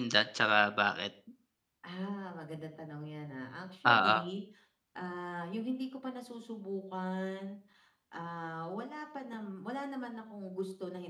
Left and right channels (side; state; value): both; identical; correlation 1.00